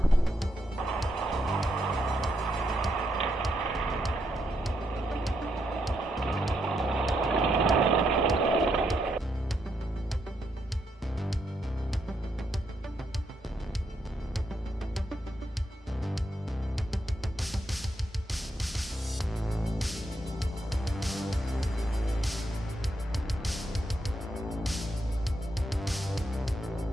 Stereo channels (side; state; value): both; normal; correlation 0.79